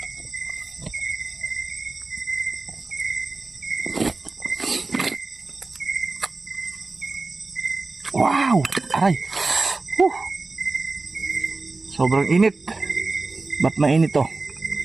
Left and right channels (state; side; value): quieter; left; 3.6 dB